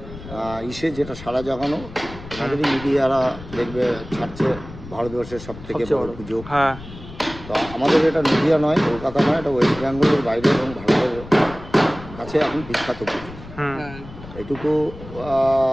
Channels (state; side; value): noise; left; rumble, 15 dB below the sound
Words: যেটা সারা জাগানো, আমাদেরই মিডিয়ারা দেখবে ছাড়ছে ভারতবর্ষের সব থেকে বড় পুজো। তো আমাদের এটা নদীয়া নয়, কলকাতা নয়, এটা ওয়েস্ট বেঙ্গলের বাইরে এবং ভারতের কাছে এখন বিখ্যাত পুজো। এইটুকু